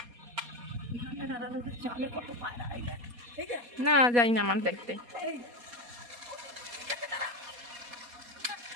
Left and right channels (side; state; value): left; late; 4.2 ms